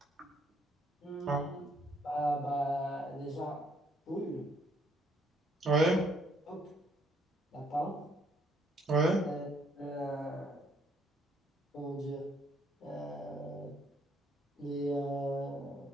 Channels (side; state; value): both; normal; correlation 0.67